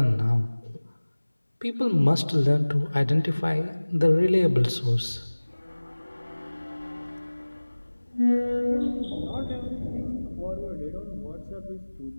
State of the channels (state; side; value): inverted; both; correlation -1.00